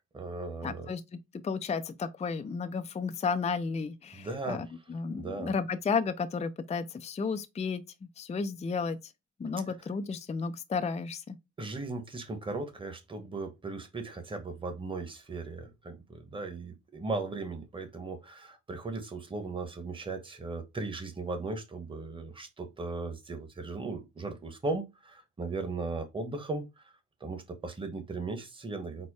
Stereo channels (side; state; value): both; normal; correlation 0.45